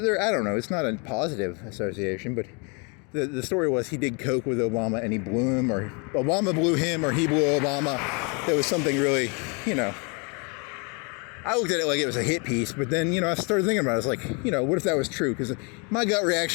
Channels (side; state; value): right; quieter; 33.3 dB